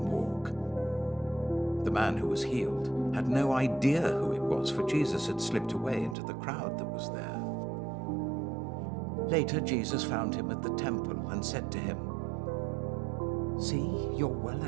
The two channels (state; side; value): drops out; left; at 6.2 s